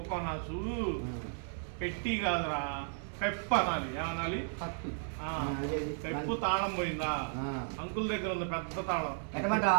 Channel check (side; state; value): left; silent; 55 dB below the other